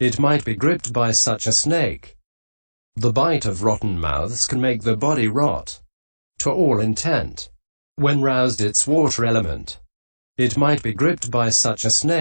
might be gripped by such a snake. The bite of rotten mouths can make the body rot, to all intent. When roused its water element. It might be gripped by such a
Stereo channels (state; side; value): inverted; both; correlation -1.00